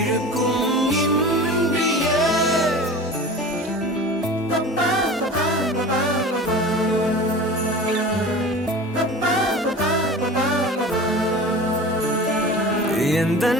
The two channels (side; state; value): both; normal; correlation 0.36